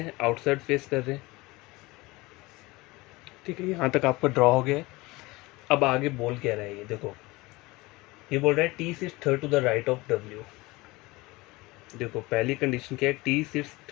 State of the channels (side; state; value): right; quieter; 22.0 dB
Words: हैं? आउटसाइड फेस कर रहे हैं। ठीक है, यहाँ तक आपका ड्रॉ हो गया है। अब आगे बोल क्या रहा है ये देखो। ये बोल रहा है T sits third to the right of W. देखो पहली कंडीशन क्या है? T sits